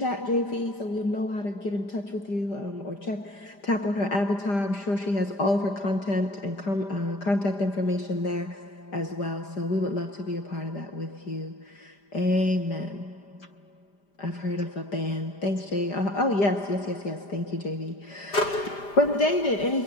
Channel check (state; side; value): late; right; 5.0 ms